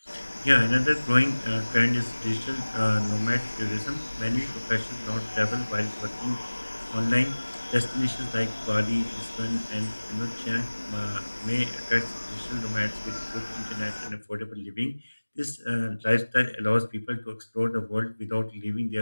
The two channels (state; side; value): inverted; both; correlation -1.00